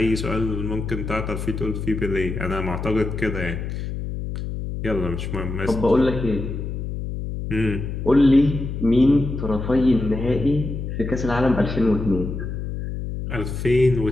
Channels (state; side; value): noise; left; hum, 5 dB below the sound